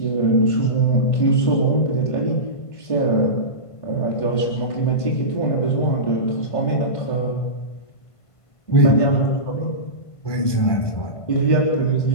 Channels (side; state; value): right; late; 1.5 ms